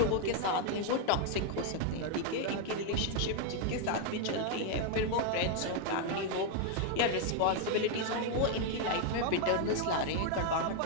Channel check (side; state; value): both; different; correlation 0.00